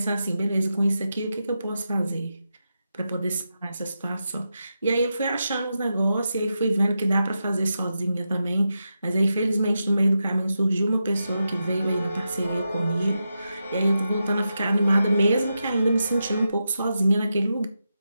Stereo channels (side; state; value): both; inverted; correlation -0.88